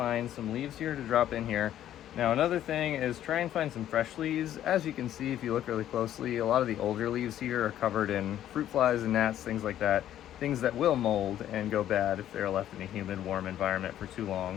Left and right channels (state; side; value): quieter; right; 11.7 dB